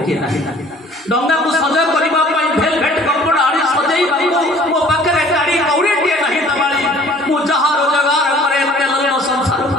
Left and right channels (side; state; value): both; normal; correlation 0.52